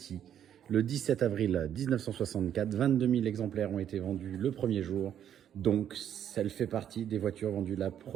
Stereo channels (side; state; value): left; quieter; 9.8 dB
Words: le 17 avril 1964. 22 000 exemplaires ont été vendus le premier jour. Donc, elle fait partie des voitures vendues le